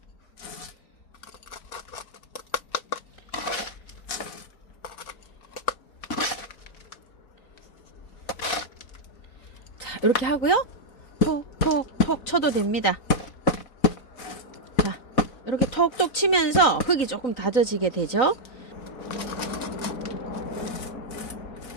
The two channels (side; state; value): right; late; 3.9 ms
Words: 자, 이렇게 하고요. 톡톡톡 쳐도 됩니다. 자, 이렇게 톡톡 치면서 흙이 조금 다져지게 되죠.